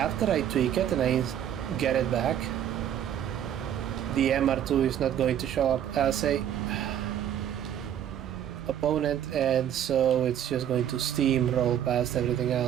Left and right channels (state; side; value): quieter; left; 10.1 dB